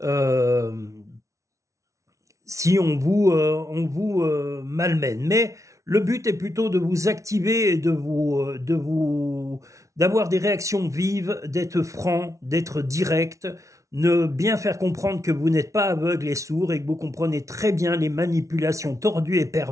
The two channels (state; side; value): late; left; 0.15 ms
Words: si on vous malmène. Mais le but est plutôt de vous activer et d'avoir des réactions vives, d'être franc, d'être direct, ne bien faire comprendre que vous n'êtes pas aveugle et sourd et que vous comprenez très bien les manipulations tordues et